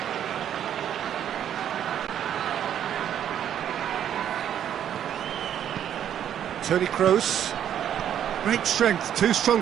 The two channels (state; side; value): quieter; left; 9.9 dB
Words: Toni Kroos. Great strength, too strong